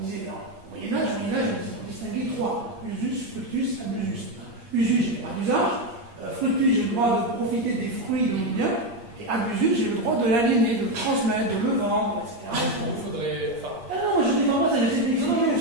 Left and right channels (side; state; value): left; late; 8.6 ms